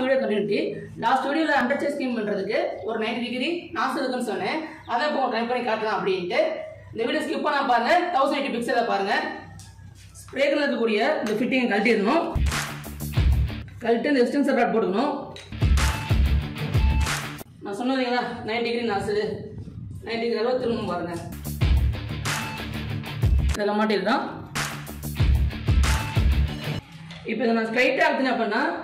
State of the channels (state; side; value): identical; both; correlation 1.00